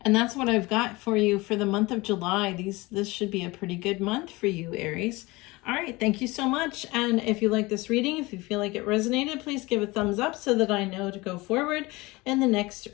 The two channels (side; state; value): right; quieter; 22.4 dB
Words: that's what I've got for you for the month of July. This should be a pretty good month for you, Aries. All right, thank you so much. And if you like this reading, if you feel like it resonated, please give a thumbs up so that I know to go forward in the next